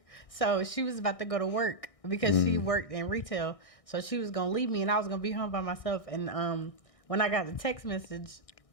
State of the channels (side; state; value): right; late; 1.6 ms